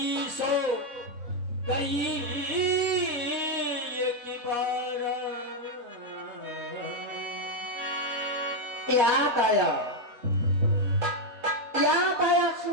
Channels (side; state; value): left; late; 4.1 ms